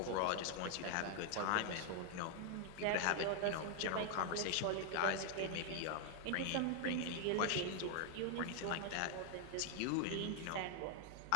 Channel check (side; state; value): both; different; correlation 0.00